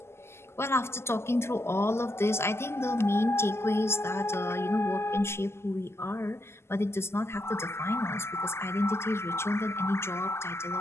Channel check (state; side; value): late; right; 0.12 ms